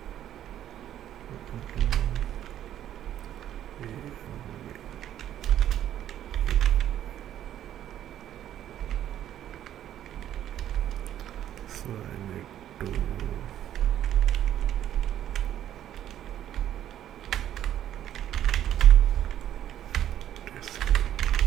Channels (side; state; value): left; quieter; 11.3 dB